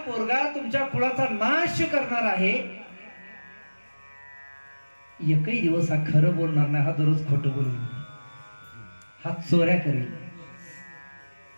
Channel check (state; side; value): inverted; both; correlation -1.00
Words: पोरगा तुमच्या कुळाचा नाश करणार आहे. एकही दिवस हा खरं बोलणार नाही. हा दररोज खोटं बोलून, हा चोऱ्या करेल,